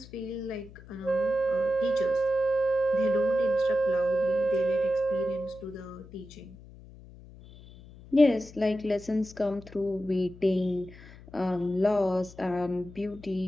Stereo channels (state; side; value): noise; left; hum, 19 dB below the sound